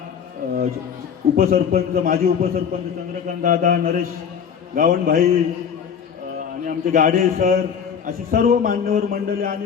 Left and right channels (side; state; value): right; quieter; 7.4 dB